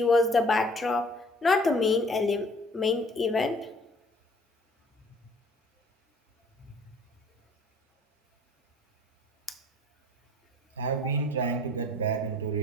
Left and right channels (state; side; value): normal; both; correlation 0.54